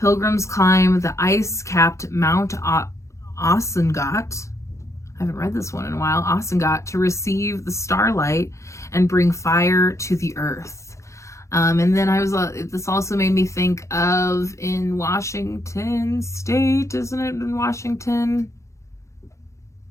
climb the ice-capped Mount Asangat. I haven't read this one in a while. Asangat, to receive the starlight and bring fire to the earth. And then this also made me think of in Washington State, isn't it in Washington?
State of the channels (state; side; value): late; right; 0.14 ms